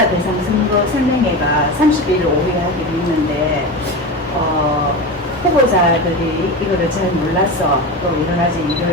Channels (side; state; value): both; normal; correlation 0.24